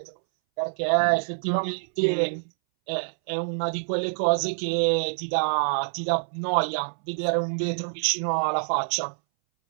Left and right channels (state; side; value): silent; left; 60 dB below the other